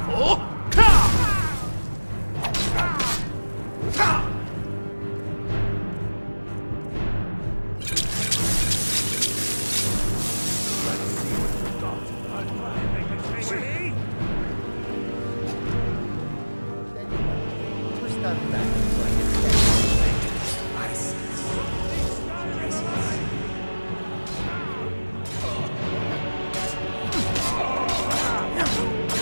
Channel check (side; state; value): both; inverted; correlation -1.00